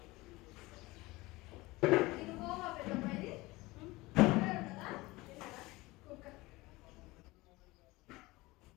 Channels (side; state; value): right; quieter; 21.1 dB